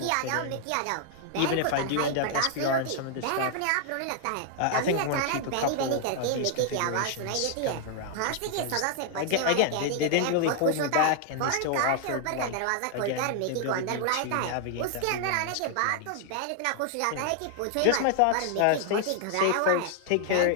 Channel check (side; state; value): both; different; correlation 0.00